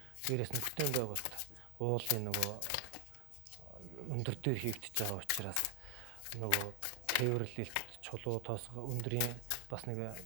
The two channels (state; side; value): different; both; correlation 0.00